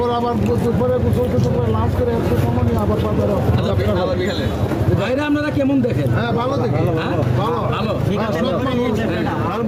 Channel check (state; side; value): identical; both; correlation 1.00